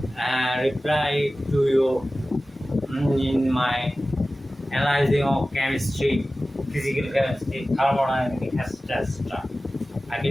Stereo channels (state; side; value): normal; both; correlation 0.96